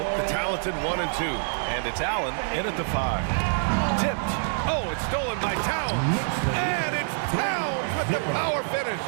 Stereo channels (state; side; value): silent; left; digital silence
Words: the talented 1 and 2. And it's Allen in at the 5. Tipped. Oh, it's stolen by Towns. And it's Towns with the power finish.